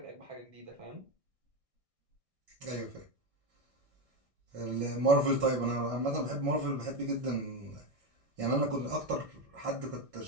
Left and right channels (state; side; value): late; left; 1.6 ms